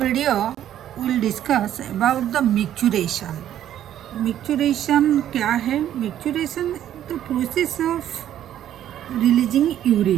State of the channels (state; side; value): quieter; left; 11.2 dB